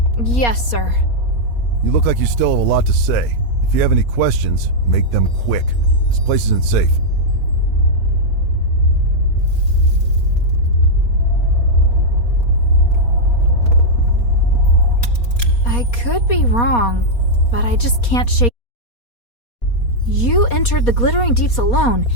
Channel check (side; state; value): right; late; 4.2 ms